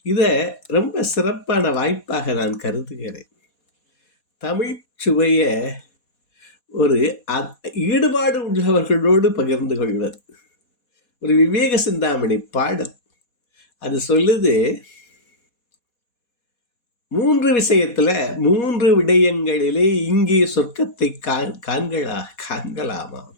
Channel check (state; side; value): late; right; 4.2 ms